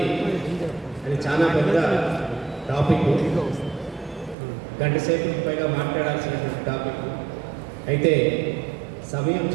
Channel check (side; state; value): left; drops out; at 4.4 s